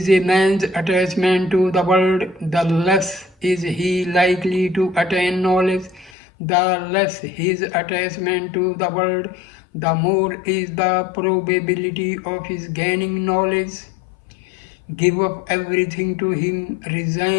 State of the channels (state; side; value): drops out; right; at 6.1 s